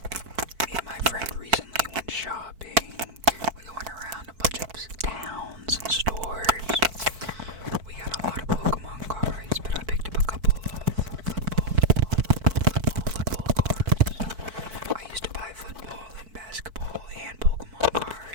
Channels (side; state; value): left; late; 4.5 ms